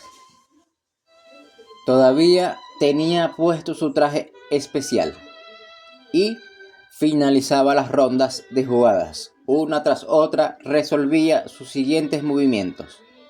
Todavía tenía puesto su traje especial y finalizaba las rondas de jugadas. Una tras otra resolvía sus siguientes movimientos.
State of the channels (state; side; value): identical; both; correlation 1.00